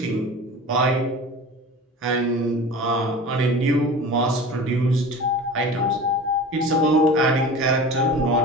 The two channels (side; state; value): both; normal; correlation 0.36